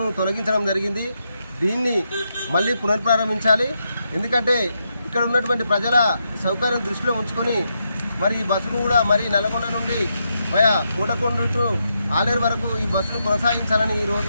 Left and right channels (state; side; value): inverted; both; correlation -0.82